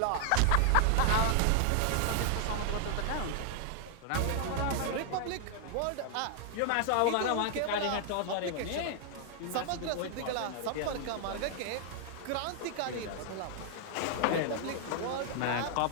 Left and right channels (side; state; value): both; different; correlation -0.01